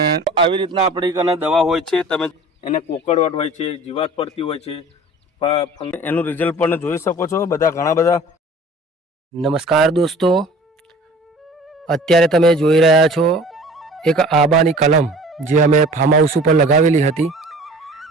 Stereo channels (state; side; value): normal; both; correlation 0.45